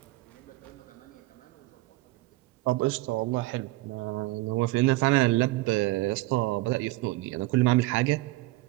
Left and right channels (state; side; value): quieter; left; 19.9 dB